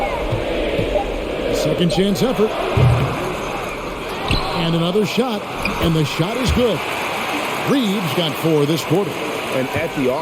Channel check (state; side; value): identical; both; correlation 1.00